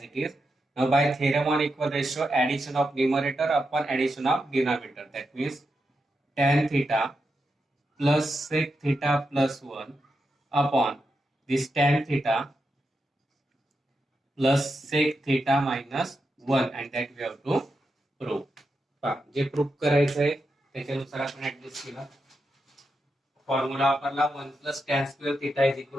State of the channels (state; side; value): normal; both; correlation 0.86